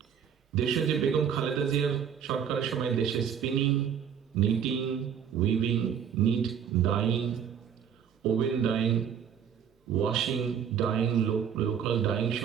দেশে যে বেগম খালেদা জিয়ার সরকারের সময় দেশে spinning, knitting, weaving, knit, dyeing, woven dyeing, washing, dyeing, local dyeing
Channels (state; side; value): quieter; left; 8.1 dB